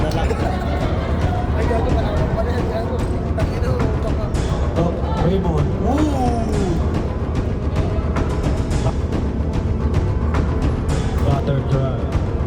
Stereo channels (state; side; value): identical; both; correlation 1.00